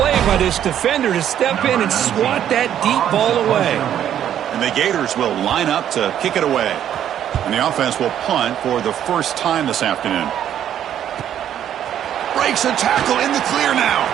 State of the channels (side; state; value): left; quieter; 10.3 dB